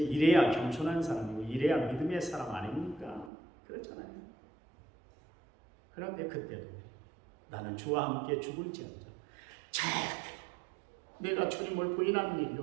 이래야 겸손한 사람이고 이래야 믿음의 사람 아닙니까? 그렇잖아요. 그런데 그때도 나는 주와 함께 죽을지언정 절대 내가 주님을 부인하는 일이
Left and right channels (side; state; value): left; drops out; at 3.3 s